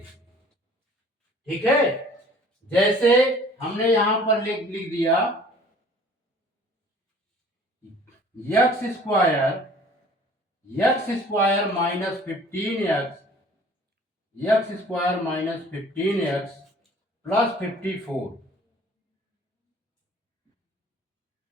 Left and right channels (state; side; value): normal; both; correlation 0.51